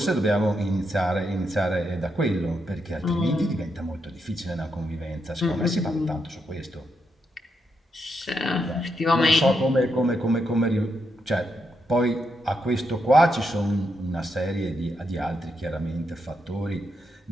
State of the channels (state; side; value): normal; both; correlation 0.81